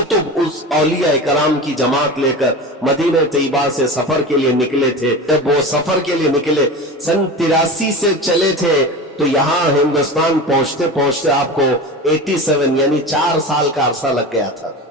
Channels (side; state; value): both; normal; correlation 0.29